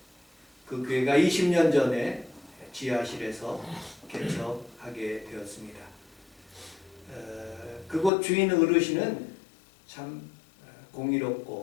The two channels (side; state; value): right; drops out; at 8.1 s